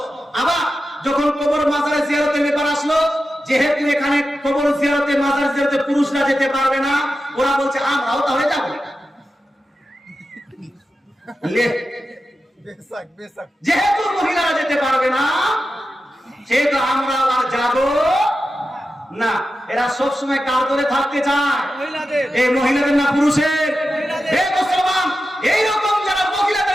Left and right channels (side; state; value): both; normal; correlation 0.91